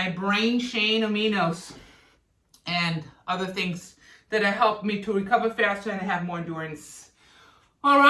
brain chain aminos, and other things that have helped me to recover faster and have more endurance. All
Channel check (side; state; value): both; identical; correlation 1.00